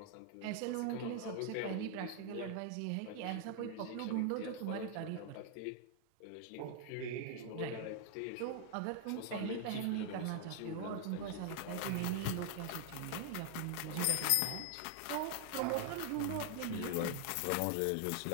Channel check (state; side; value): different; both; correlation 0.00